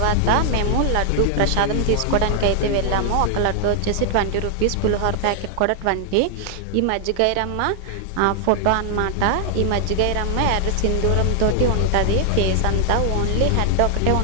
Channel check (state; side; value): different; both; correlation 0.00